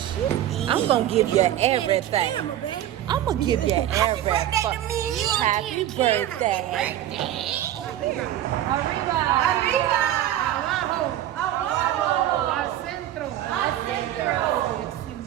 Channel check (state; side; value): quieter; left; 12.4 dB